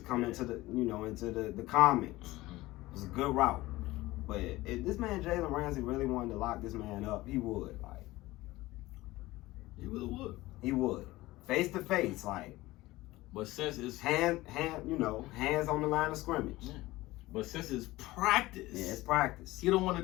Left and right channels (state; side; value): quieter; right; 18.6 dB